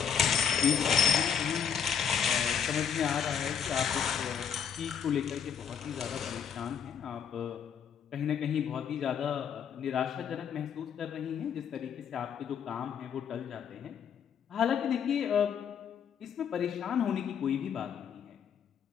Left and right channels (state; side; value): quieter; right; 7.8 dB